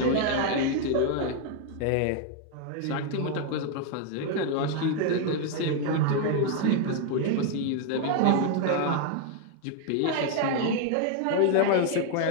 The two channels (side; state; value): both; different; correlation 0.01